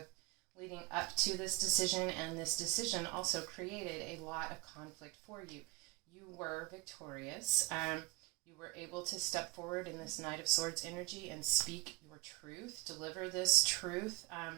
leading up to this decision, and this decision also created a lot of conflict for you. You were victorious. You were able to step forward in this Knight of Swords energy and speak your truth, deliver this truth.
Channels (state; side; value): quieter; left; 21.5 dB